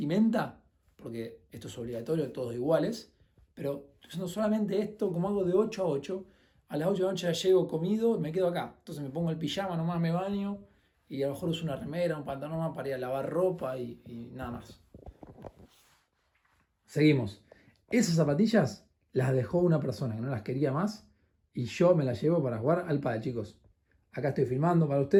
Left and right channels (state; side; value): identical; both; correlation 1.00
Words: porque esto es obligatorio, todos iguales, pero estoy usando solamente esto, como hago de 8 a 8. A las 8 de la noche ya llego comido, me quedo acá. Entonces me pongo el pijama, nomás me baño y a lo mejor uso una remera, un pantalón más para ir a lavar ropa y nada más. Seguimos. Esas zapatillas las dejó una persona que no las quería más y yo me las llevo para jugar al pádel, chicos. Acá estoy filmando para